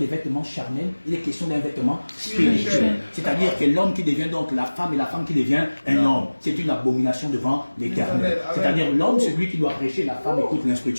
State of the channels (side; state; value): both; inverted; correlation -1.00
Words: vêtements charnels, il est question d'un vêtement spirituel. C'est-à-dire que l'homme qui devient donc la femme et la femme qui devient un homme, c'est une abomination devant l'Éternel. C'est-à-dire l'homme, c'est lui qui doit prêcher, la femme écoute